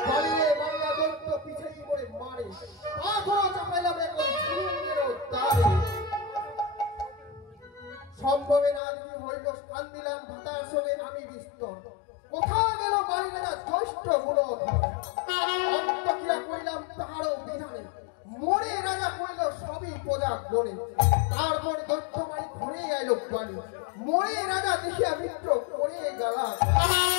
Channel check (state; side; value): drops out; right; at 8.8 s